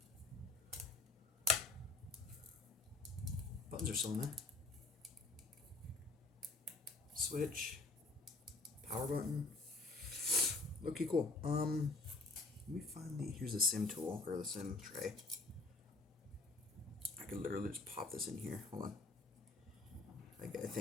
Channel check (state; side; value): quieter; right; 3.2 dB